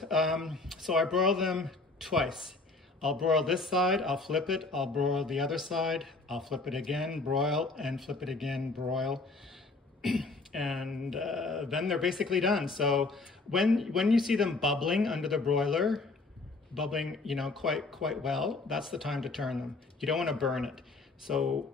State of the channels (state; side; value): quieter; right; 3.6 dB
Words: so I broil them twice. I'll broil this side, I'll flip it, I'll broil the other side, I'll flip it again, broil, and flip it again, broil. And then they're basically done. So when you see them bubbling under the broiler, bubbling, you know, quite well, that's the time to turn them. You don't want to burn it. So